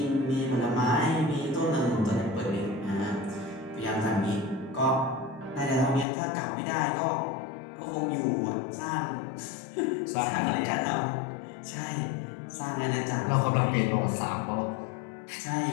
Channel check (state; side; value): drops out; right; at 6.1 s